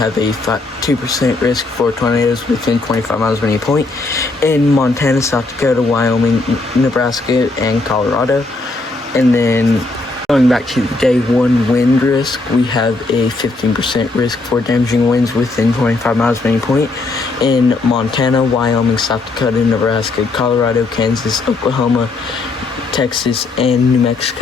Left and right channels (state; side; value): quieter; right; 3.4 dB